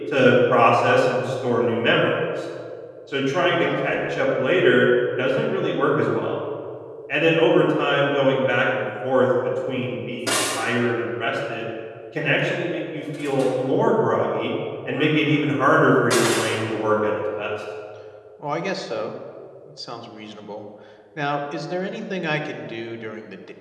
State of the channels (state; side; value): identical; both; correlation 1.00